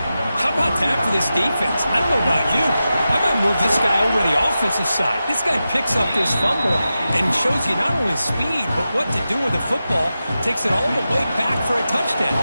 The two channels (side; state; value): both; inverted; correlation -0.92